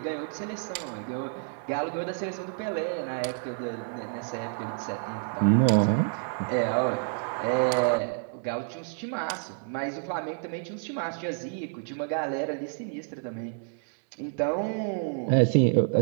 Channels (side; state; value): left; silent; digital silence